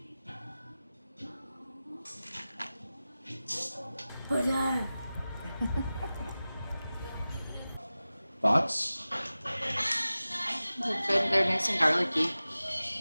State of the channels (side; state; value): both; inverted; correlation -0.96